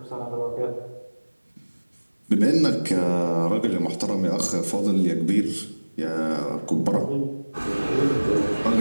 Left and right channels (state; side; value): inverted; both; correlation -1.00